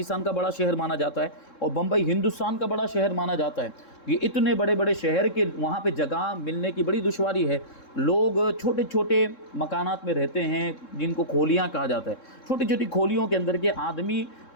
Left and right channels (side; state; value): right; late; 3.7 ms